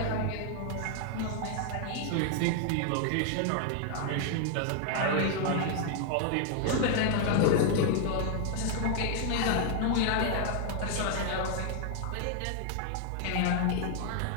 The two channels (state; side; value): different; both; correlation 0.00